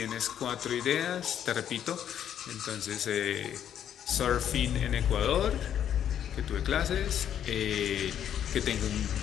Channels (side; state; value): right; quieter; 9.7 dB